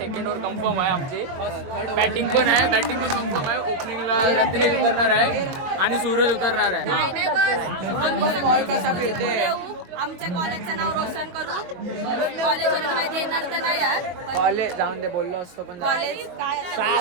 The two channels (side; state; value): left; late; 22 ms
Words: ओव्हर कन्फर्म आहे आमची. बॅटिंग पण कन्फर्म आहे. ओपनिंगला रत्नेश उतरणार आहे आणि सूरज उतरणार आहे. आमच्या कॉलेजचं नाव रोशन करू. कॉलेजवर काही देणार तर नाही यार, कॉलेज जाऊन दे बोललो असतो पण कॉलेज काय